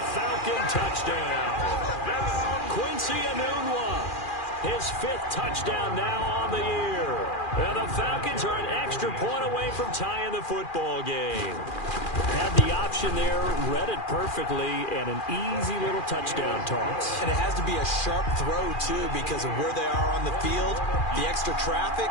Falcon touchdown. Quincy Enunwa, his 5th touchdown now on the year. And the Falcons are an extra point away from tying the football game. Had the option there, read it perfectly, and an easy little touchdown toss. And it has to be a sharp throw, too, because of where they are on the field, the extra traffic,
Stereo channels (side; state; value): right; late; 2.4 ms